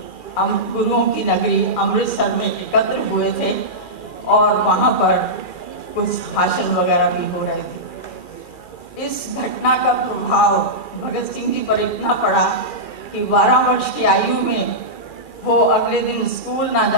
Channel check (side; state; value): right; late; 2.4 ms